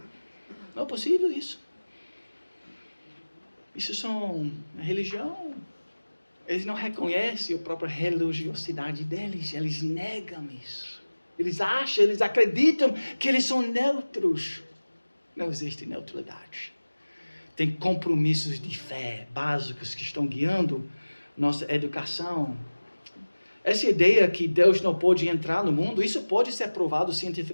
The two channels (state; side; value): inverted; both; correlation -1.00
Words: Não é possível isso. Isso são religião. Eles não reconhecem a própria religiosidade deles. Eles negam isso. Eles acham, eles acreditam que eles são neutros. Não existe neutralidade. Tem compromissos de fé básicos que estão guiando nossa educação. Essa ideia que Deus não pode entrar no mundo, isso pode ser provado